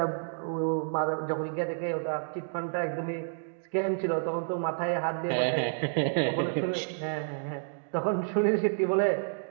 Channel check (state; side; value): silent; left; digital silence